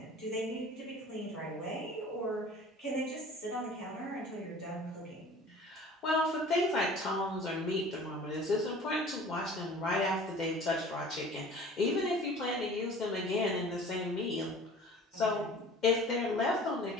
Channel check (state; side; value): normal; both; correlation 0.45